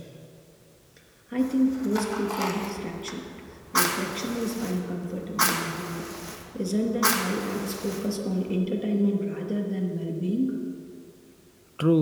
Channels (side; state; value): both; identical; correlation 1.00